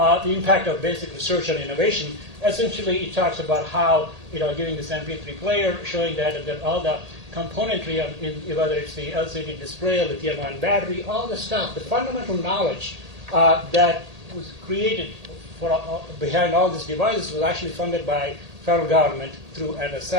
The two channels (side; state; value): left; late; 1.8 ms